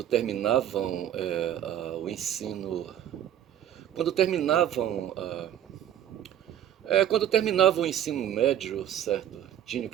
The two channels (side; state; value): left; quieter; 10.8 dB